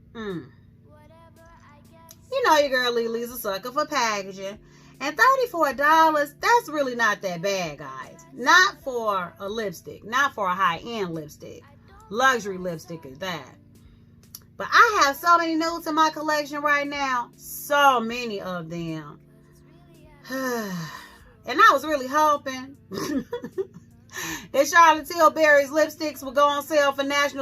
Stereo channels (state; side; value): identical; both; correlation 1.00